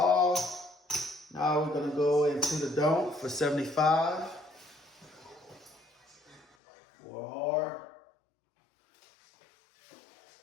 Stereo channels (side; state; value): right; drops out; at 6.5 s